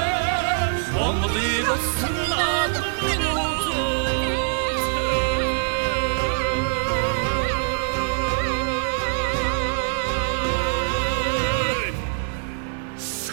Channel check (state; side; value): silent; left; digital silence